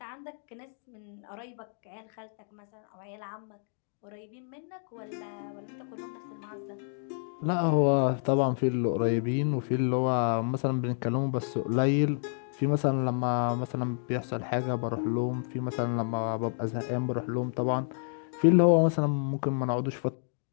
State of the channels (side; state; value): right; silent; digital silence